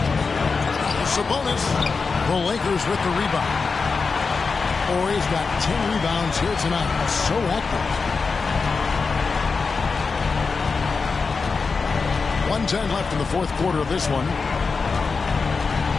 Sabonis. The Lakers with the rebound. Horry's got 10 rebounds here tonight. So active. 1:10 left in the fourth quarter of this one.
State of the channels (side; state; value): right; quieter; 4.7 dB